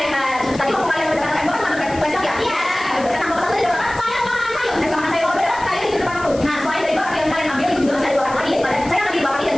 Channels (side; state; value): left; noise; hiss, 18 dB below the sound